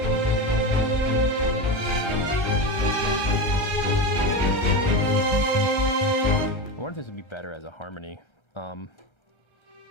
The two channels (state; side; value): late; right; 1.3 ms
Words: I wonder if this would be better as a harmony.